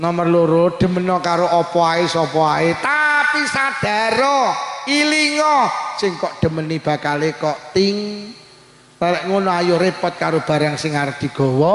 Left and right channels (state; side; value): identical; both; correlation 1.00